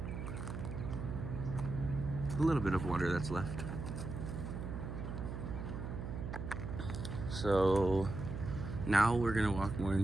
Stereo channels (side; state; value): right; noise; hum, 6 dB below the sound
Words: a little bit of water that's left. So now we're gonna walk more